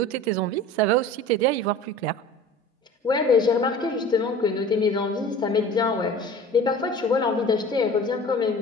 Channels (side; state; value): both; normal; correlation 0.41